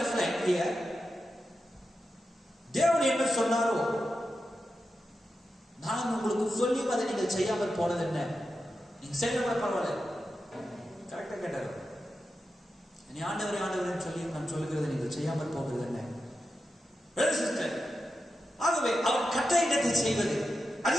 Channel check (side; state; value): both; normal; correlation 0.90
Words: here? தேவன் என்ன சொன்னாரோ நான் உங்களுக்கு சொல்லியும் அதை நீங்கள் செய்யாமல் போனது என்ன? நீங்க செய்யல கூட பரவாயில்ல, கரெக்டா கேட்டாரு. நீ ஆண்டவரே ஆண்டவரே சொல்லி நான் சொல்லுகிறது நீங்கள் செய்யாமல் போகிறது என்ன? ஆகவே அவர் கட்டளையிடத்தை செய்வது